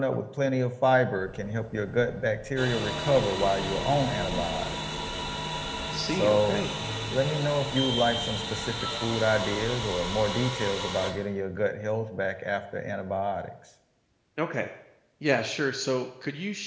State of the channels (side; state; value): both; identical; correlation 1.00